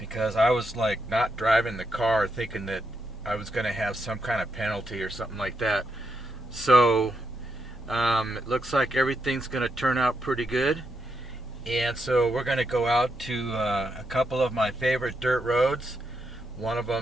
I was like not driving the car thinking that I was going to have some kind of penalty or something like that. So it looks like everything's going to turn out pretty good. And so we're going to go out to a couple of my favorite dirt roads. One of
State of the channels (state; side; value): normal; both; correlation 0.81